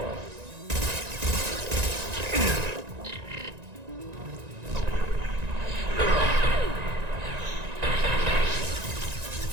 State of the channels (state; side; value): late; left; 1.9 ms